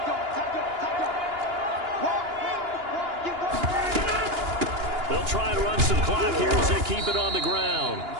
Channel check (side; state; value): left; late; 2.9 ms